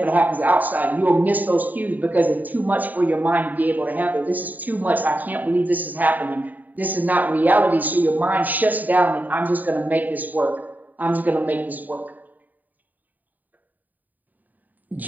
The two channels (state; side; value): late; left; 0.085 ms